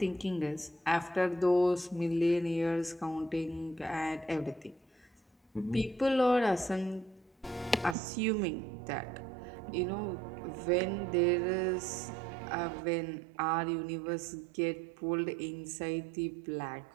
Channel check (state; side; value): drops out; left; at 8.0 s